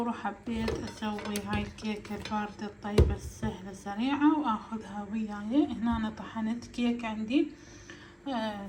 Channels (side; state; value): both; identical; correlation 1.00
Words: وحبيت اسوي هاي الكيكة الباردة الطيبة السهلة السريعة واخذها وياي. هنا أنا طحنت كيك عندي،